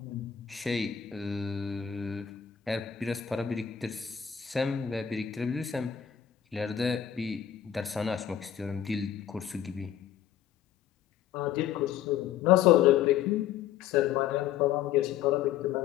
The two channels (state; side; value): quieter; right; 9.7 dB